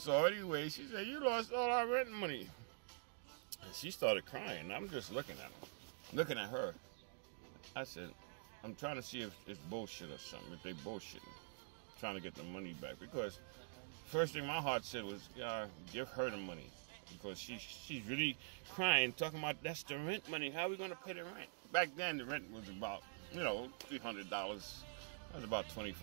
anyway, she said, "You lost all our rent money." And she started crying. I'm just looking at her. I said, I'm trying to see if it's bullshit or something, if they bullshitting, trying to get the money back. Because first thing my heart said was, give her the money. Because she's really crying, talking about that's the rent money. How are we going to pay the rent? Back then, the rent was about, $300. That was about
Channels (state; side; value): silent; left; digital silence